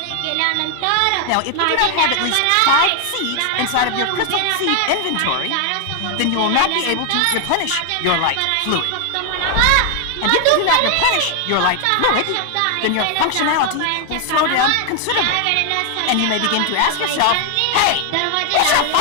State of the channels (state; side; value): different; both; correlation 0.00